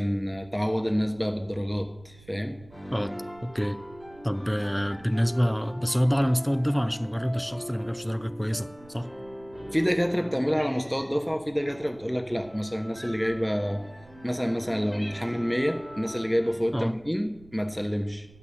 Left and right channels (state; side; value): noise; right; rumble, 24 dB below the sound